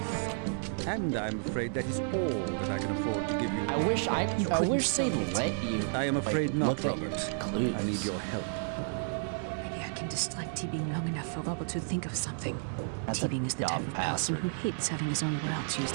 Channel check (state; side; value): silent; left; digital silence